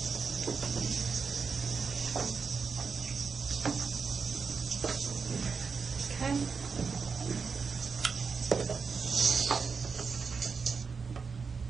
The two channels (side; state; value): left; quieter; 5.3 dB